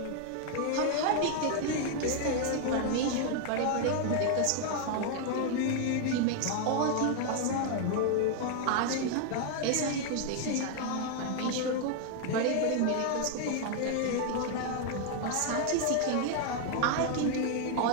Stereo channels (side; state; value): both; different; correlation 0.00